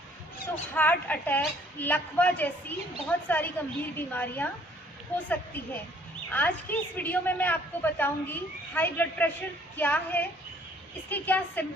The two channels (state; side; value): normal; both; correlation 0.60